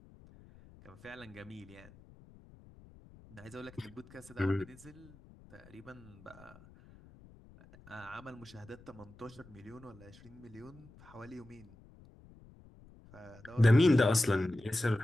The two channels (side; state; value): left; noise; rumble, 22 dB below the sound